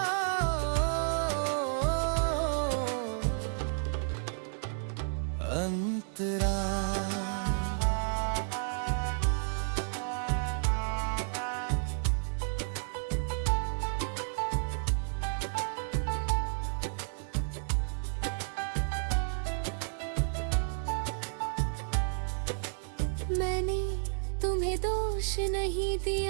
अंतरा मैंने तुम्हें दोष नहीं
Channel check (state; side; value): silent; left; digital silence